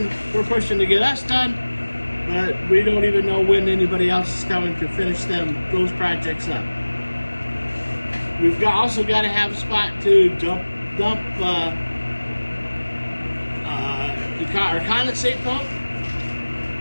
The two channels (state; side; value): inverted; both; correlation -1.00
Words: to get us done, but we don't even know when anybody else is coming to finish those projects up. We've also got to have a spot to dump our condensate pump.